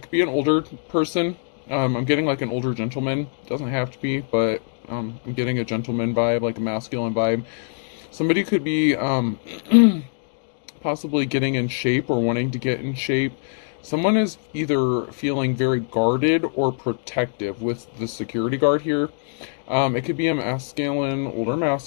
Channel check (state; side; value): silent; right; digital silence